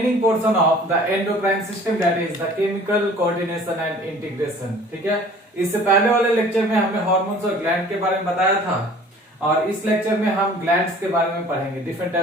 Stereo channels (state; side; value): normal; both; correlation 0.49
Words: portion of the endocrine system, that is the chemical coordination and integration. ठीक है, इससे पहले वाले lecture में हमने hormones और ग्लैंड के बारे में बताया था और इस लेक्चर में हम ग्लैंड्स के बारे में पढ़ेंगे। डिफरेंट